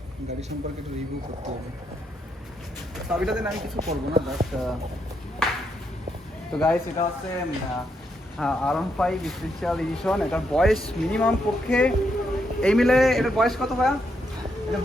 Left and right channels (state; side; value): normal; both; correlation 0.79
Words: गाड़ी सम्पर्के একটু রিভিউ করতে হবে। চাবিটাতে আমি কিছু করব না বাট তো গাইস এটা হচ্ছে R15 স্পেশাল এডিশন। এটার বয়স মিনিমাম পক্ষে এই মিলে এটার বয়স কত ভাইয়া? এটার